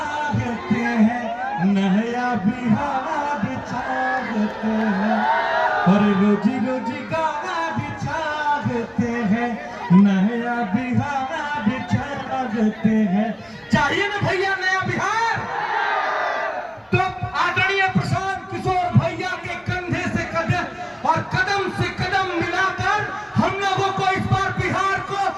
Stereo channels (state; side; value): identical; both; correlation 1.00